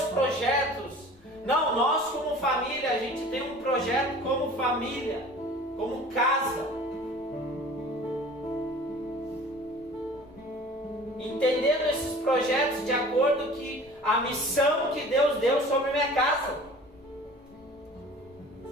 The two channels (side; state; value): both; normal; correlation 0.44